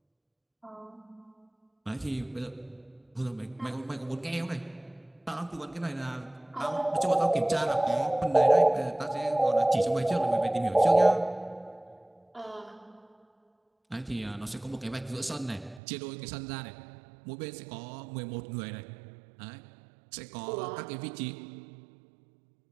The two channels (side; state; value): left; drops out; at 15.8 s